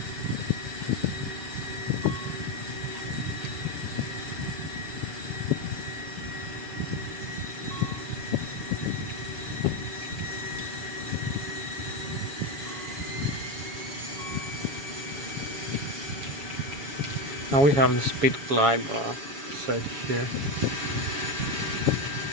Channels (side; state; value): left; late; 7.2 ms